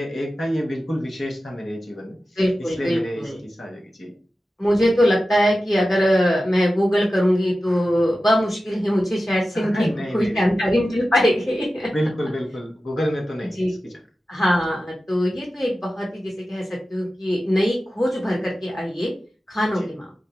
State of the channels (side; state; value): both; normal; correlation 0.94